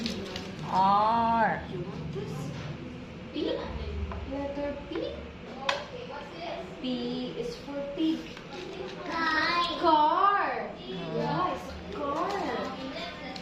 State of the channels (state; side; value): identical; both; correlation 1.00